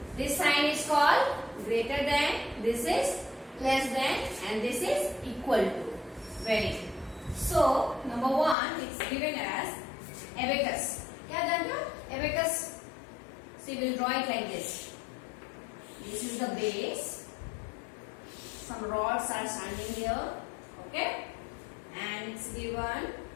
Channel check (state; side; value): drops out; right; at 8.6 s